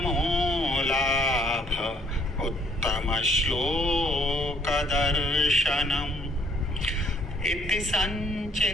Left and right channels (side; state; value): both; normal; correlation 0.64